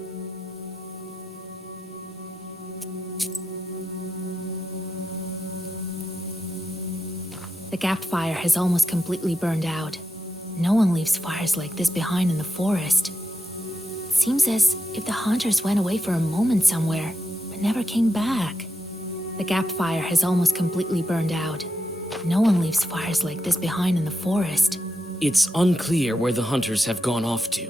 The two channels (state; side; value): normal; both; correlation 0.86